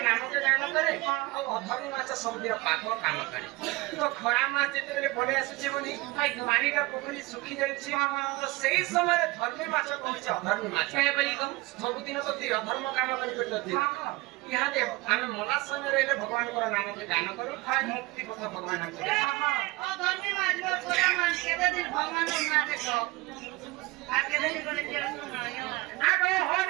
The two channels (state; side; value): quieter; left; 22.1 dB